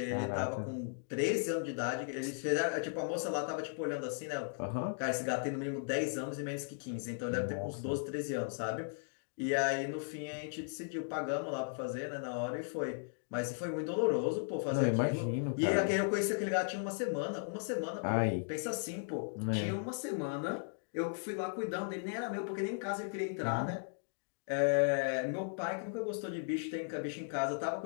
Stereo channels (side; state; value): right; silent; digital silence